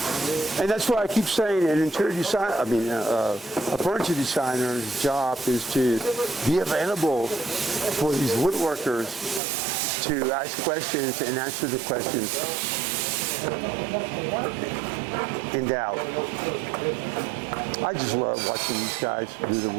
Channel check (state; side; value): drops out; left; at 9.4 s